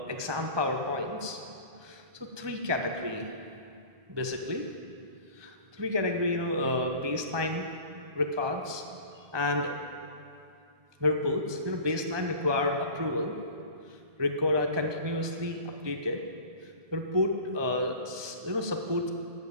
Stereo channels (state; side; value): late; left; 1.2 ms